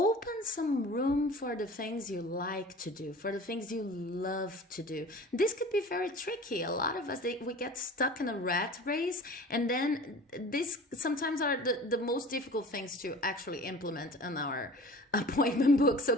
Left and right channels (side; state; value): both; normal; correlation 0.41